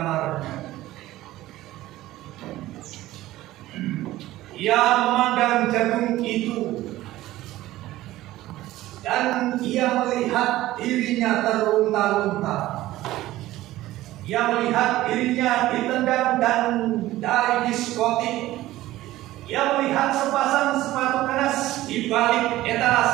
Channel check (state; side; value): quieter; left; 16.0 dB